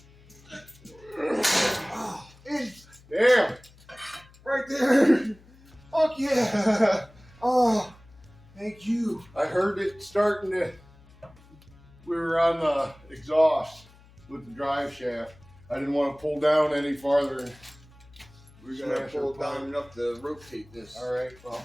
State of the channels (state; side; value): noise; left; hum, 25 dB below the sound